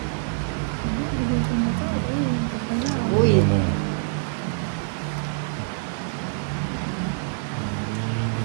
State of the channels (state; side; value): silent; left; digital silence